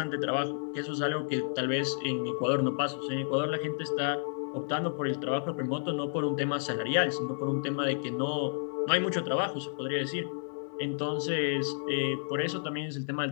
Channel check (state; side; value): silent; right; digital silence